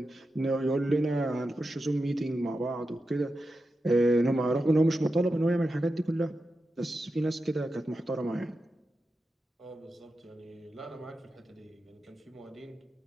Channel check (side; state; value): both; normal; correlation 0.90